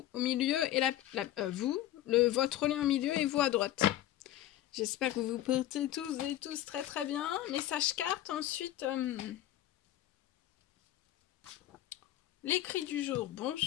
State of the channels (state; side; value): quieter; right; 13.4 dB